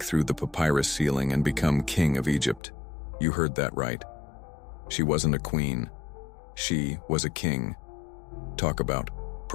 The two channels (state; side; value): drops out; right; at 2.6 s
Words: through the papyrus ceiling and become king of Egypt. You heard that right. She wasn't a queen. She was a king. Talk about